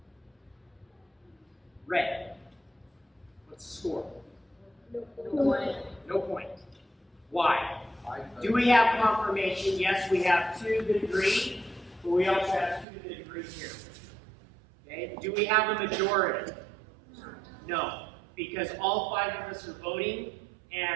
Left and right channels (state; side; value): drops out; left; at 12.9 s